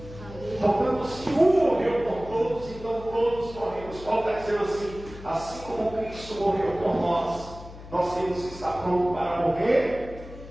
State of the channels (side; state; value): left; noise; hum, 15 dB below the sound